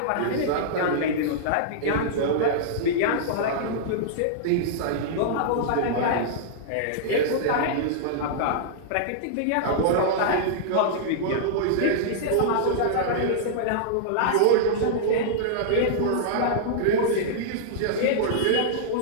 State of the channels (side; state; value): both; different; correlation -0.02